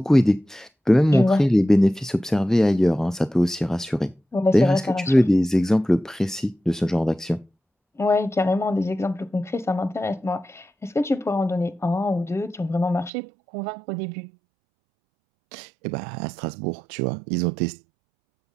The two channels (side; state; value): left; drops out; at 13.1 s